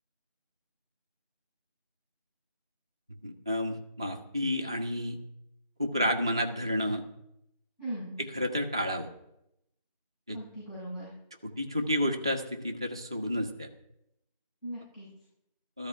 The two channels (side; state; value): both; inverted; correlation -0.73